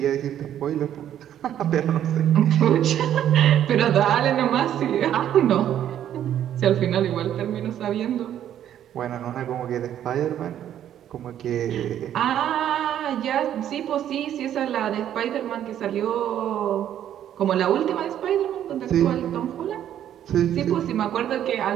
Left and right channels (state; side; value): quieter; left; 10.7 dB